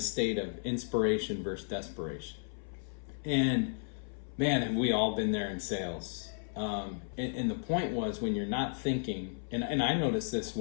state of inspiration versus desperation. And man, have we all been there in sales. And the point was when you're not thinking, and I notice this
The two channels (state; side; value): silent; right; 55 dB below the other